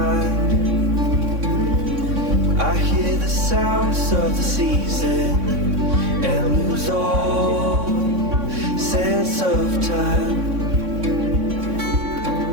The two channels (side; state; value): left; late; 3.6 ms